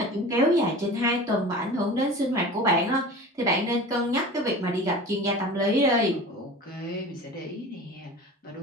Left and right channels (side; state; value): both; normal; correlation 0.37